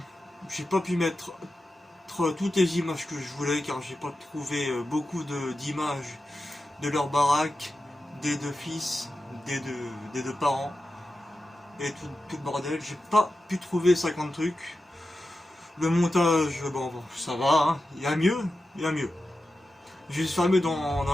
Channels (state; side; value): normal; both; correlation 0.92